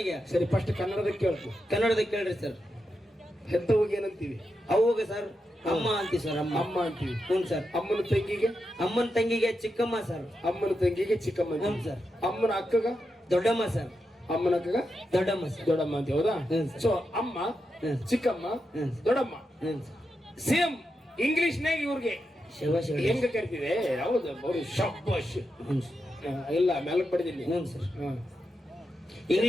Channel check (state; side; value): normal; both; correlation 0.87